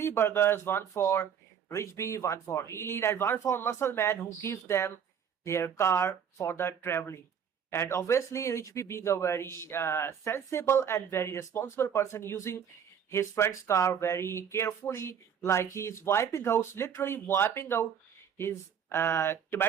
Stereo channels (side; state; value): left; quieter; 7.9 dB